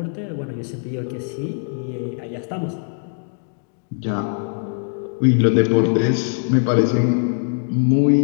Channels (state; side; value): silent; right; 59 dB below the other